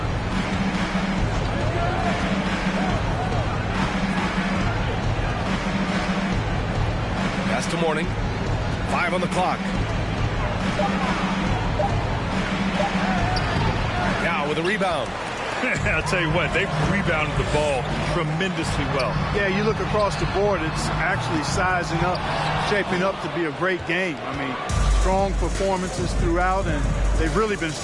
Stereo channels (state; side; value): identical; both; correlation 1.00